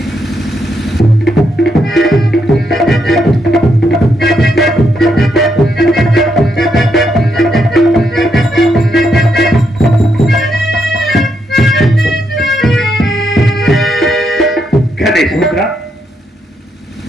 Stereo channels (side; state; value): both; normal; correlation 0.79